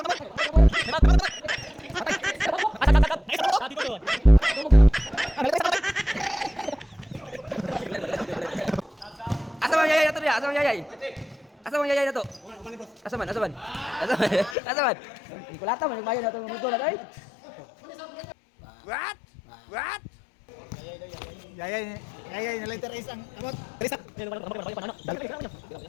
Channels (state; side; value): drops out; right; at 14.6 s